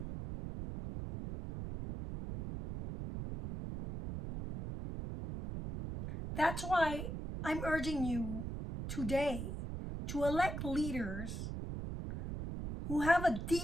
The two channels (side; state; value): right; noise; rumble, 6 dB below the sound